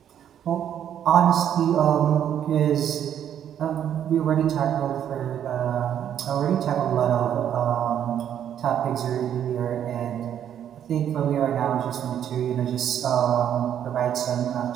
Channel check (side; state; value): left; quieter; 9.7 dB